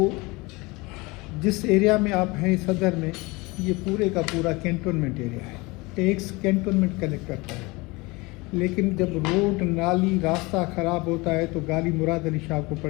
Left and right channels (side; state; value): right; quieter; 24.3 dB